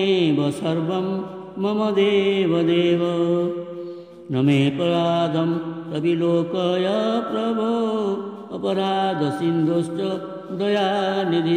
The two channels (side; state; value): both; identical; correlation 1.00